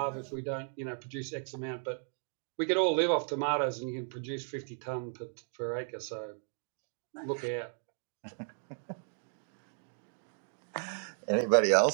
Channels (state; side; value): silent; left; 55 dB below the other